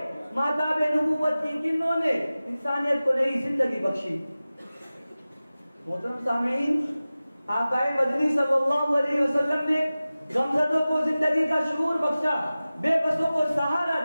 ماتاب نبوت کی کنوں نے انسانیت کو نئی زندگی بخشی۔ محترم سامعین، آقائے مدنی صلی اللہ علیہ وسلم نے غمزدوں کو زندگی کا شعور بخشا، بے بسوں کو سہارا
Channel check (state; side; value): inverted; both; correlation -0.97